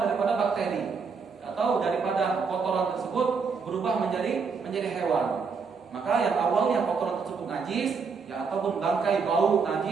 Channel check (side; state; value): left; quieter; 5.3 dB